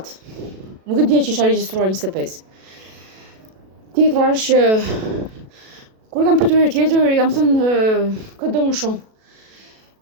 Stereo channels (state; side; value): late; left; 37 ms